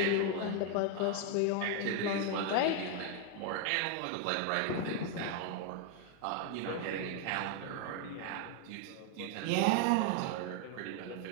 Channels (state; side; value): different; both; correlation 0.01